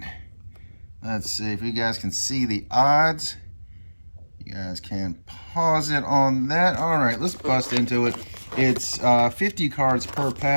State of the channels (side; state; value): both; inverted; correlation -1.00